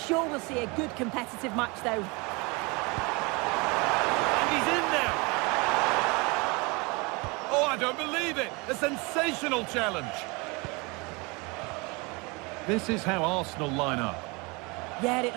we'll see a good competitive match, though. And he's in now. Oh, I don't believe it. A sensational challenge. This is how Arsenal line up. Yeah, it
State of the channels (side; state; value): left; quieter; 27.7 dB